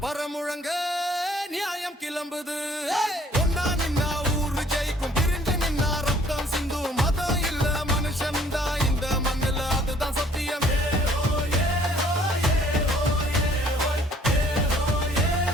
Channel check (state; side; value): normal; both; correlation 0.58